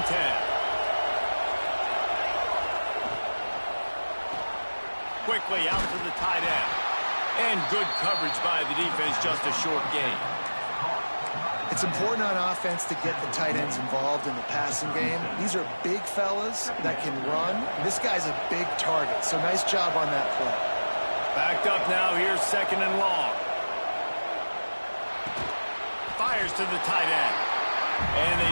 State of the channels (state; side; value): inverted; both; correlation -1.00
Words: 10. Quickly out to the tight end. And good coverage by the defense, just a short gain. It's important on offense to get the tight ends involved in the passing game. These are big fellas that can run. This guy's a big target, so nice job on that play. Backed up now, here's 2nd and long. Fires to the tight end. And they